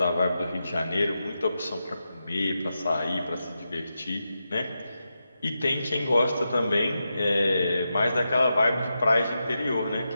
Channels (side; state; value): both; inverted; correlation -0.88